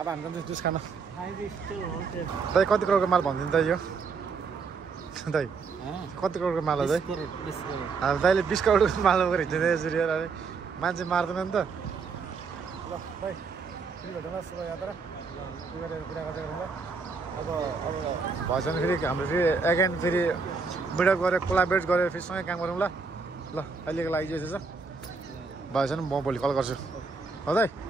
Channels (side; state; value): left; quieter; 4.7 dB